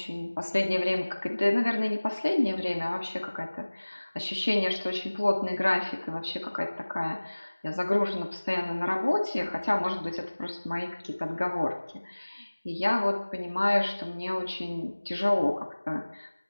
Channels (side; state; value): both; inverted; correlation -1.00